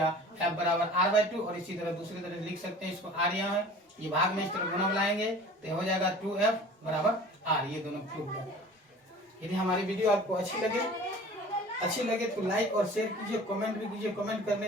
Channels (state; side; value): normal; both; correlation 0.44